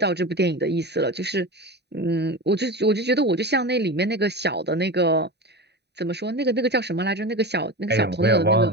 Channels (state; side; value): late; left; 0.49 ms